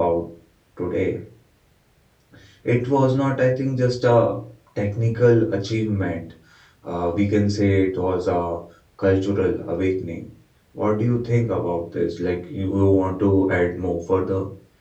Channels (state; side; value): identical; both; correlation 1.00